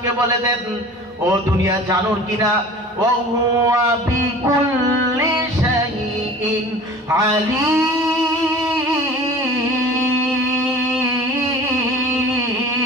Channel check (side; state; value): both; normal; correlation 0.42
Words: বলে দেন, ও দুনিয়া জানো কিনা, ওয়া হুয়া বিকুল্লি শাইইন আলীম।